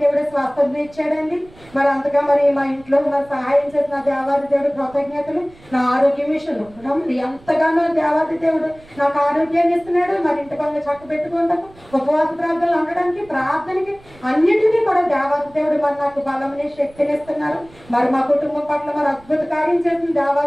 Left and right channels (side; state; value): right; noise; rumble, 25 dB below the sound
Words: దేవుడు స్వస్థత ఇచ్చాడండి. మరి అంతగా మరి మా ఇంట్లో మరి సహాయం చేసిన దేవాది దేవుడు కృతజ్ఞతలు. నా ఆరోగ్యం విషయంలో ఎంతగానో దేవాది దేవుడు నాకు ఆరోగ్యాన్ని ఇస్తున్నాడు. మరి ఇంటి పనులు చక్క పెట్టుకుంటాము, ఉపవాస ప్రార్థనలు ఉండడానికి, ప్రార్థనకి అన్నిటినీ కూడా దేవాది దేవుడు మరి నాకు బలమని శక్తిని ఇస్తున్నారు. మరి మా కుటుంబం పట్ల మరి అద్భుత కార్యం చేసిన